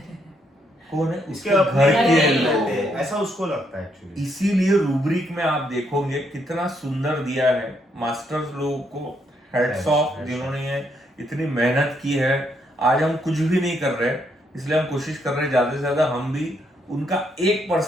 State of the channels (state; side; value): normal; both; correlation 0.75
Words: कौन है, इसके उसके अपने घर लोग के रहते हैं, लोग। ऐसा उसको लगता है एक्चुअली। इसीलिए रूब्रिक में आप देखोगे कितना सुंदर दिया है, मास्टर्स लोगों को हेड्स ऑफ, जिन्होंने ये इतनी मेहनत की है। आज हम कुछ भी नहीं कर रहे, इसलिए हम कोशिश कर रहे हैं ज्यादा से ज्यादा हम भी उनका